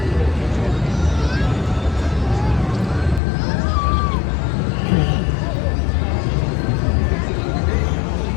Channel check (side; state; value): right; drops out; at 3.2 s